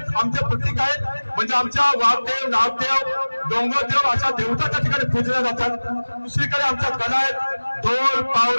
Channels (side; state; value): both; inverted; correlation -1.00